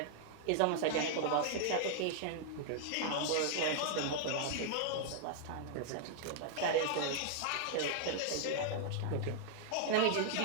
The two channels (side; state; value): both; different; correlation -0.01